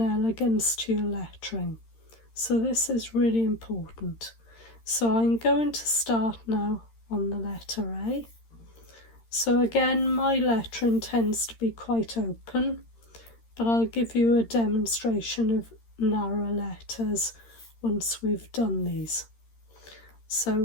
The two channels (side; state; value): right; late; 13 ms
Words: to your lettering. So this is really important. So I'm going to start now on the letter A. So again, my lettering tends to be quite open, but I'll give you a demonstration of narrow letters once we've done these.